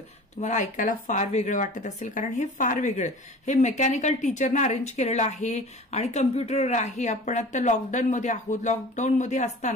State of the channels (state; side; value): normal; both; correlation 0.41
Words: तुम्हाला ऐकायला फार वेगळं वाटत असेल, कारण हे फार वेगळं, हे मेकॅनिकल टीचरनं अरेंज केलेलं आहे आणि कम्प्युटरवर आहे. आपण आता लॉकडाऊनमध्ये आहोत. लॉकडाऊनमध्ये